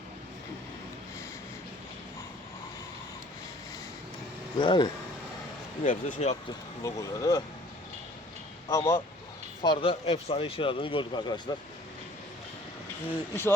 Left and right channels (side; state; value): both; normal; correlation 0.53